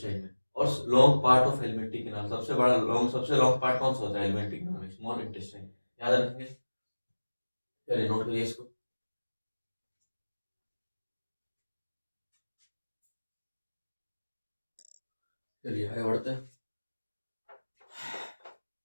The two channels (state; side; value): inverted; both; correlation -1.00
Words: में। और long part of alimentary canal, सबसे लॉन्ग पार्ट कौन सा होता है एलिमेंट्री कैनाल में? Small intestine. याद रखेंगे, चलिए नोट करिए इसको। चलिए आगे बढ़ते हैं।